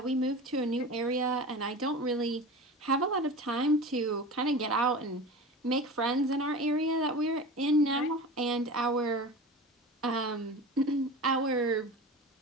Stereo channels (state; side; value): normal; both; correlation 0.32